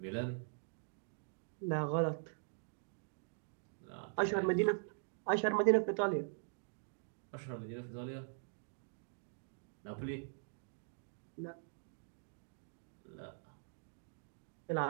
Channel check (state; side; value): silent; left; digital silence